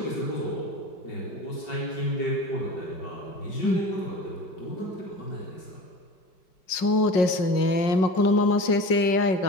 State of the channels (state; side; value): late; right; 5.5 ms